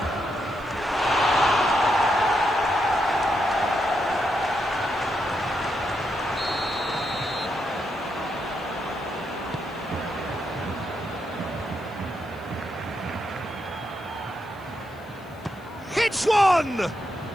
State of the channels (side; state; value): left; noise; hiss, 29 dB below the sound